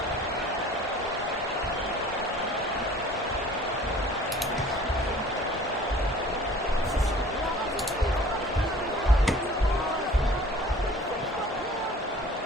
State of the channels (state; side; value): normal; both; correlation 0.47